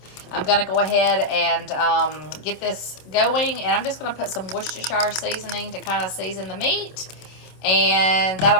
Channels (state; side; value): late; right; 26 ms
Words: I'm going to go ahead and get this going, and I'm just going to put some Worcestershire seasoning to kind of season the meat. And